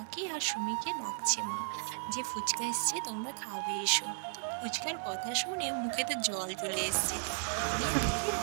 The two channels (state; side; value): silent; left; digital silence